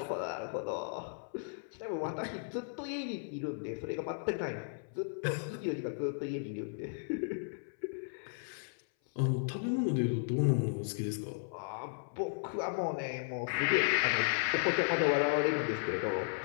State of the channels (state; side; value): silent; right; 54 dB below the other